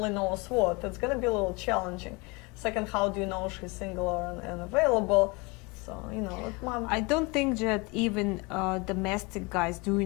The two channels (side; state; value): right; quieter; 27.5 dB